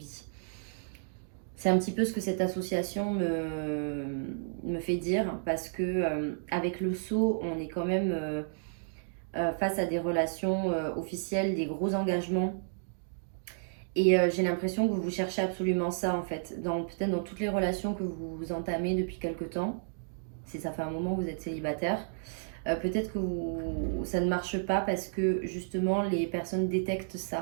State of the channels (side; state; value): left; silent; digital silence